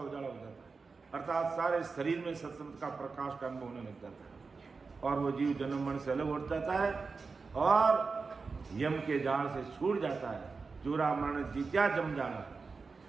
उजाला हो जाता है। अर्थात सारे शरीर में सत्शब्द का प्रकाश का अनुभव होने लग जाता है और वो जीव जन्म मरण से अलग उठ जाता है और यम के जाल से छूट जाता है। जुरा मरण जीत्या जम जाना।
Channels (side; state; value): left; quieter; 4.5 dB